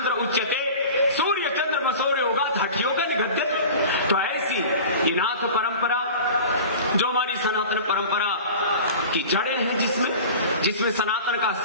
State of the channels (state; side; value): inverted; both; correlation -0.37